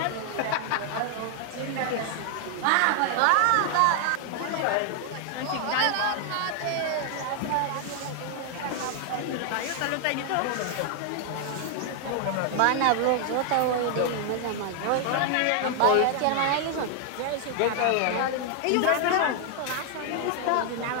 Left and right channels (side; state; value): both; different; correlation 0.00